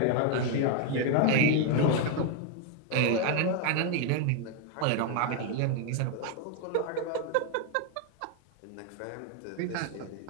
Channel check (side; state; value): both; different; correlation 0.01